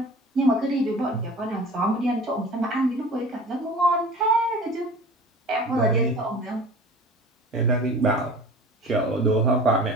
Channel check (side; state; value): both; normal; correlation 0.40